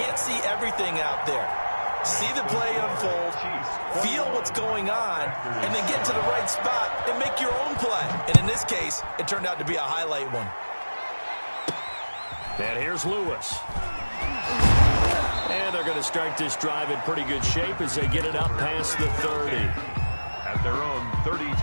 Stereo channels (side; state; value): both; inverted; correlation -1.00